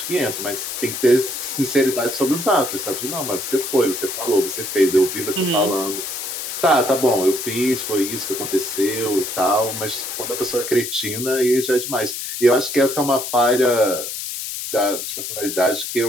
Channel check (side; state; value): left; noise; hiss, 6 dB below the sound